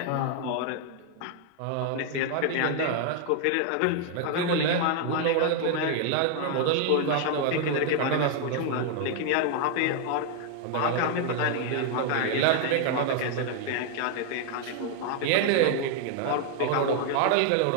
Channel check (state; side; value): different; both; correlation 0.00